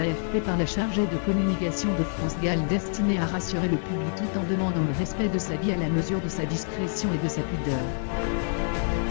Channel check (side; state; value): right; silent; digital silence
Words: par la chargée de communication de France Gall destinée à rassurer le public tout en demandant le respect de sa vie à la mesure de sa discrétion et de sa pudeur.